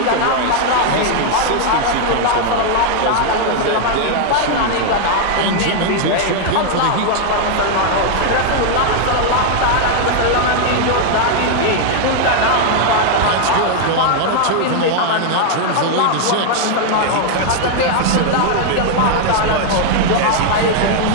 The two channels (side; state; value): both; different; correlation 0.00